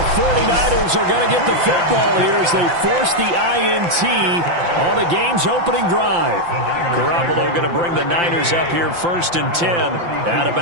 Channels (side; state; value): left; late; 5.8 ms